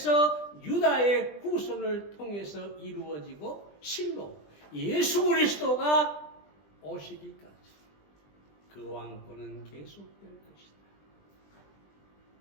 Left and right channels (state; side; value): late; right; 20 ms